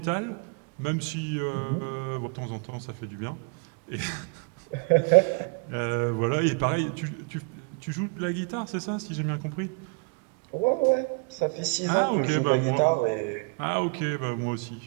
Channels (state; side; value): quieter; left; 33.9 dB